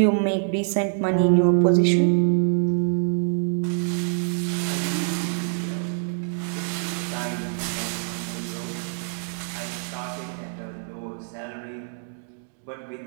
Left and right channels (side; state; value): left; silent; digital silence